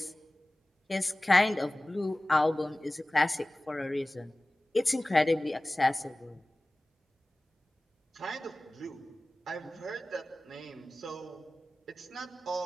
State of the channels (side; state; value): both; normal; correlation 0.98